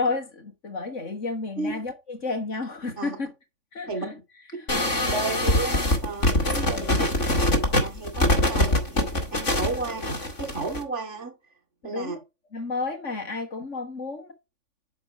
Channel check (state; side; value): late; right; 3.5 ms